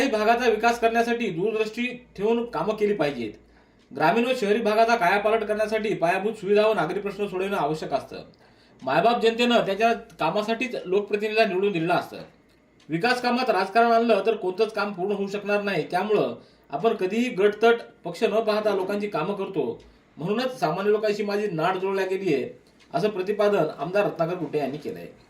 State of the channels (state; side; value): identical; both; correlation 1.00